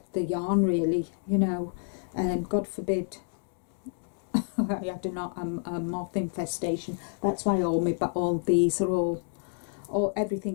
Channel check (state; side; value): silent; right; digital silence